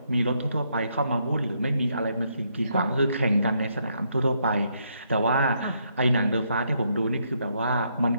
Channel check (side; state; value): both; inverted; correlation -0.75